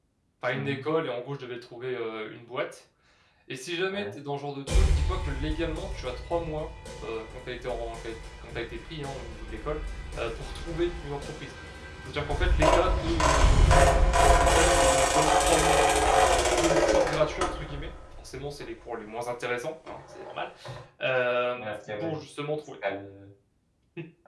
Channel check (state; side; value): identical; both; correlation 1.00